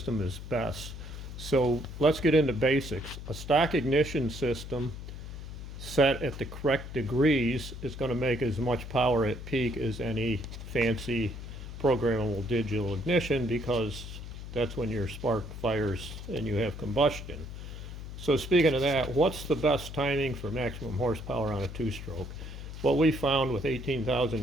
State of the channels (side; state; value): left; noise; hum, 10 dB below the sound